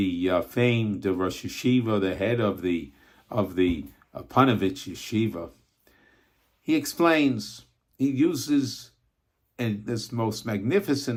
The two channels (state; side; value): identical; both; correlation 1.00